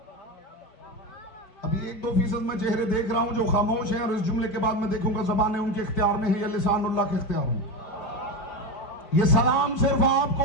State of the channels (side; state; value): right; late; 5.0 ms